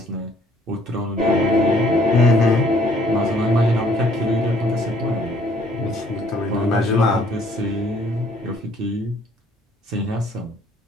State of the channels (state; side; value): normal; both; correlation 0.61